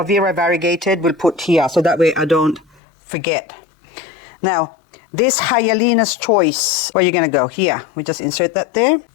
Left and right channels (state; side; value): drops out; right; at 2.8 s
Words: Vera variegated. We'll put here, so that way I don't forget. Now, this Hyalena's Choice, where you're going to go? Here. We just insert that there.